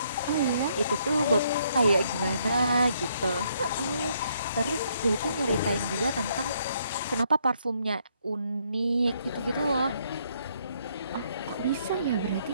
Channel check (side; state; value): both; inverted; correlation -0.71